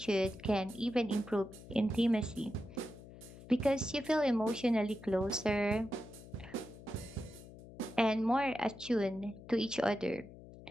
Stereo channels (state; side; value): noise; left; hum, 17 dB below the sound